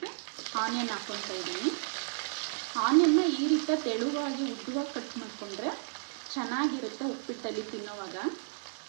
ಆನಿಯನ್ ಹಾಕ್ಕೊಳ್ತಾ ಇದ್ದೀನಿ. ಆನಿಯನ್ನ ಈ ರೀತಿ ತೆಳುವಾಗಿ ಉದ್ದವಾಗಿ ಕಟ್ ಮಾಡಿಕೊಂಡ್ರೆ ಚೆನ್ನಾಗಿರುತ್ತೆ ಉಪ್ಪಿಟ್ಟಲ್ಲಿ ತಿನ್ನೋವಾಗ.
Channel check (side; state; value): left; silent; digital silence